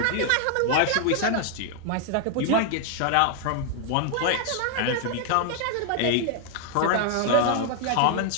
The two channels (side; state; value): both; different; correlation 0.00